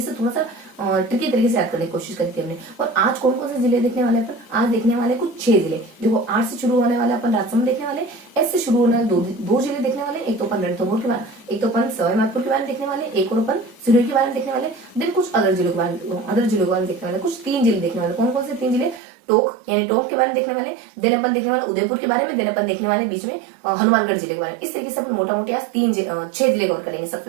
से थोड़ा सा ट्रिकी तरीके से याद करने की कोशिश करी थी हमने। और आज कौन कौन से जिले देखने वाले अपन, आज देखने वाले कुछ 6 जिले। देखो, 8 से शुरू होने वाले अपन राजसमंद देखने वाले, एस से शुरू होने वाले दो जिले देखने वाले, एक तो अपन रणथंभौर के बारे, एक तो अपन सवाई माधोपुर के बारे में देखने वाले, एक और अपन सिरोही के बारे में देखने वाले, देन कुछ अदर जिलों के बारे में देखने वाले, कुछ 3 जिले देखने वाले। कौन कौन से 3 जिले, टोंक यानी टोंक के बारे में देखने वाले, देन अपन देखने वाले उदयपुर के बारे में, देन अपन देखने वाले बीच में हनुमानगढ़ जिले के बारे में। इस तरीके से अपन मोटा मोटी आज 6 जिले कवर करेंगे। सबसे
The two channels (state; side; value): drops out; left; at 19.0 s